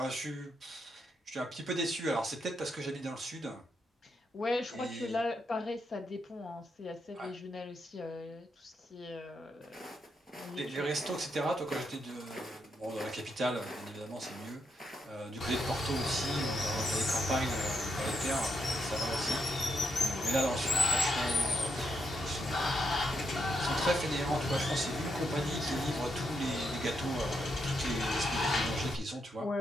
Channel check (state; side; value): normal; both; correlation 0.80